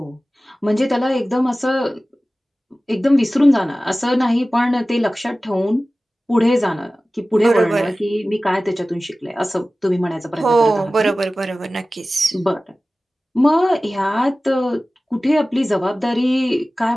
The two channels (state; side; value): normal; both; correlation 0.97